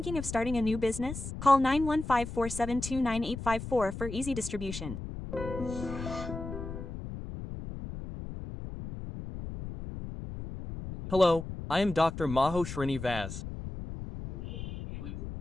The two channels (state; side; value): noise; left; rumble, 8 dB below the sound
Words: of starting a new business? Call 915-472-9854 for easy distribution. Hello, I am Dr. Maho Srinivas.